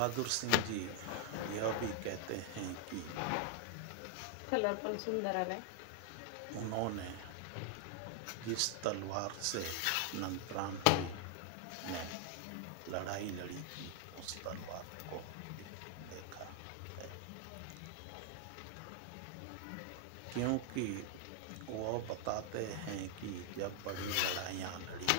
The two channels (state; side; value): different; both; correlation 0.00